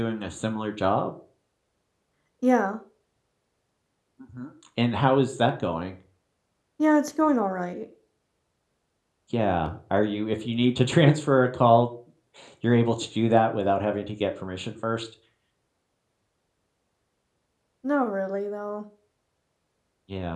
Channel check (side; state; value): both; identical; correlation 1.00